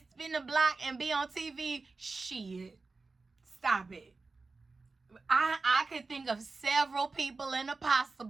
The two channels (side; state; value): left; quieter; 3.9 dB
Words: spin the block and be on TV? Shit. Stop it. I could think of several people in the